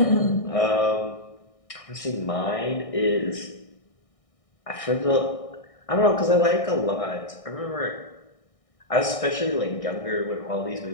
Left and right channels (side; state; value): right; late; 1.6 ms